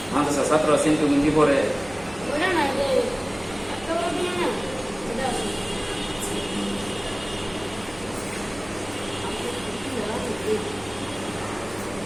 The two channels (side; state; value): right; noise; hum, 19 dB below the sound